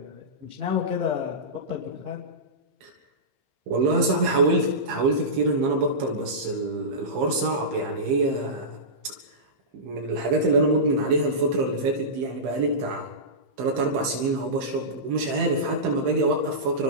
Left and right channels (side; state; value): left; late; 15 ms